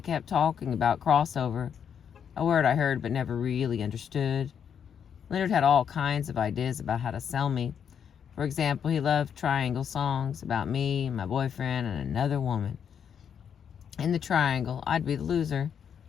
kept talking about crossover, a word I heard but never really understood. Leonard had all kinds of ideas about how to sell me. For example, he loved triangle songs about me, my boyfriend, and another woman. In the triangle, I'd be the loser.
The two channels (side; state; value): right; quieter; 7.9 dB